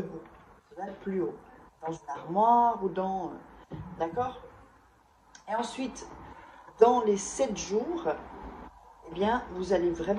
Ça doit être plus haut, dans une armoire ou dans... D'accord? Et ensuite, dans les 7 jours, eh bien, vous allez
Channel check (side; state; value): both; identical; correlation 1.00